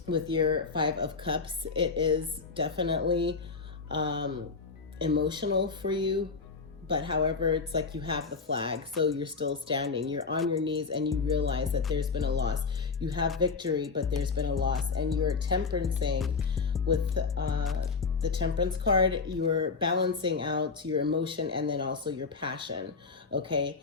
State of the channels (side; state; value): right; quieter; 4.7 dB